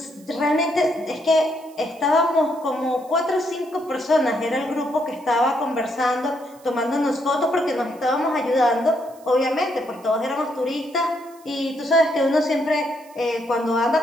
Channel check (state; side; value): noise; right; hiss, 27 dB below the sound